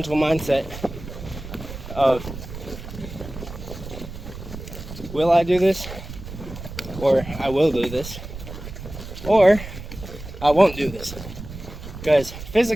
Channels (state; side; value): noise; right; rumble, 11 dB below the sound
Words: mindset of, will I do this? Or I will do this. Or I won't do this. Because